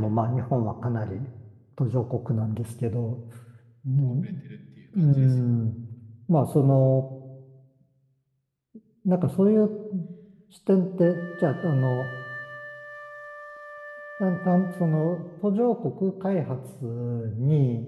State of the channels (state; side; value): identical; both; correlation 1.00